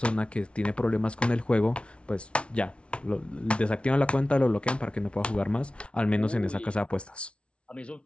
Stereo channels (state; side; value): late; right; 0.059 ms